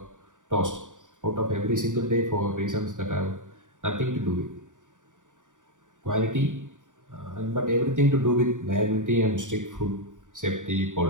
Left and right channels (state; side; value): late; left; 0.87 ms